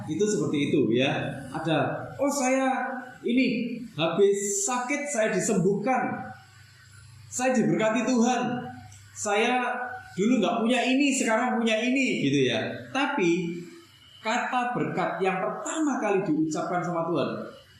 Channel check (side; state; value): both; identical; correlation 1.00